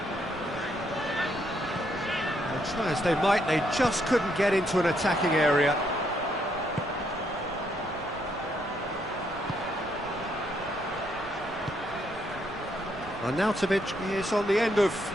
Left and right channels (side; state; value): right; noise; rumble, 20 dB below the sound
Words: Try as they might, they just couldn't get into an attacking area. Arnautovic is on the end of